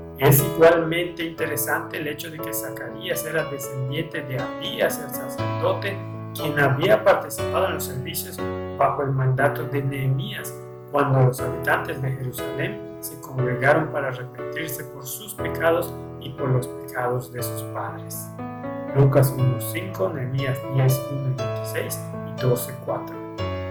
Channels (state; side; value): identical; both; correlation 1.00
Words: Es igualmente interesante el hecho de que Zacarías era descendiente de Abías, el sacerdote, quien había participado en los servicios bajo el mandato de Nehemías, cuando los habitantes de Jerusalén se congregaron para arrepentirse por sus pecados y por los pecados de sus padres. Lucas 1:5, Nehemías 10:1 y 26 y 12:4.